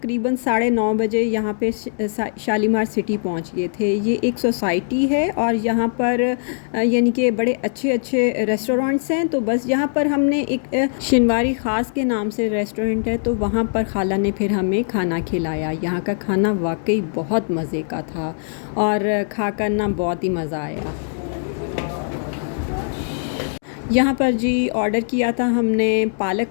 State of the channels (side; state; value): right; silent; digital silence